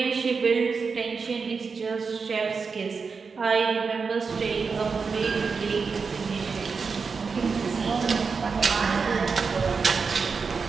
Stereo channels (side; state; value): left; quieter; 5.1 dB